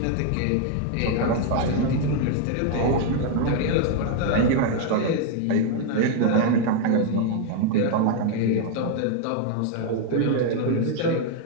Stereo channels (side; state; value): both; different; correlation 0.00